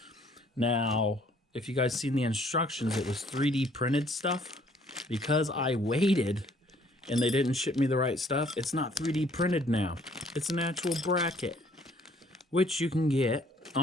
Now, if you guys seen the instructions, it was 3D printed stuff. Because I waited and they didn't ship me the right stuff, it's not 3D printed now. It's an actual bracket, which you can get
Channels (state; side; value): normal; both; correlation 0.61